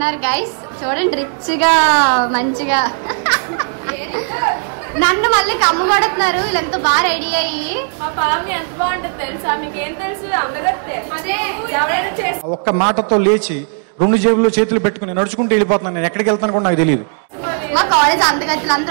గైస్. చూడండి రిచ్ గా మంచిగా నన్ను మళ్ళీ కమ్మ కొడుతున్నారు. వీళ్ళు ఎంత బాగా రెడీ అయ్యి. మా పామి ఎంత బాగుంటుంది తెలుసా? మీకేం తెలుసు? అందగత్తే. ఒక్క మాటతో లేచి రెండు జేబుల్లో చేతులు పెట్టుకుని నడుచుకుంటూ వెళ్ళిపోతున్నాను. నేను ఎక్కడికి వెళ్తాను కూడా నాకు తెలియదు. మా కాలేజ్ అందగత్తులు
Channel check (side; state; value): left; silent; 60 dB below the other